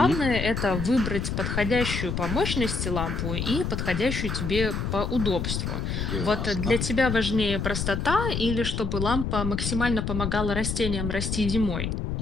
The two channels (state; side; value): noise; left; rumble, 2 dB below the sound